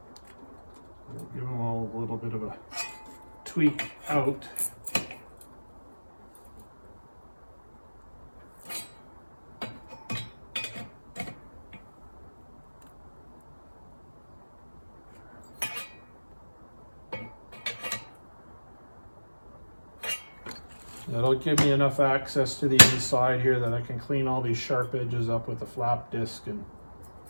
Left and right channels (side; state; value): both; inverted; correlation -1.00